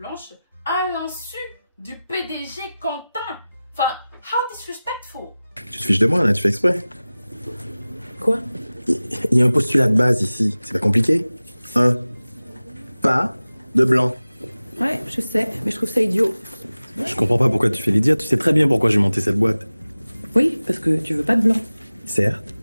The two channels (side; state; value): both; inverted; correlation -0.97